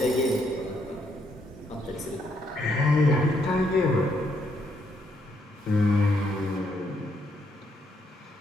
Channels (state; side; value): normal; both; correlation 0.74